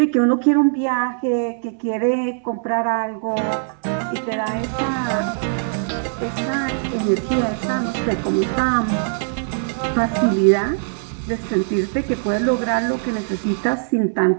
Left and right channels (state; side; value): silent; left; 64 dB below the other